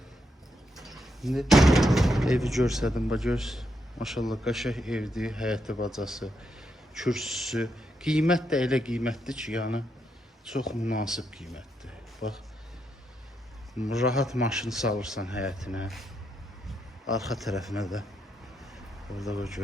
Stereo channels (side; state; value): both; normal; correlation 0.80